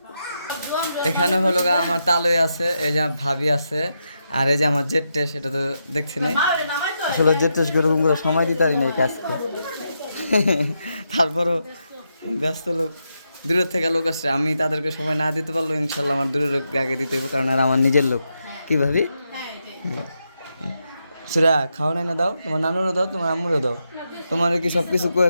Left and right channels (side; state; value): both; inverted; correlation -0.84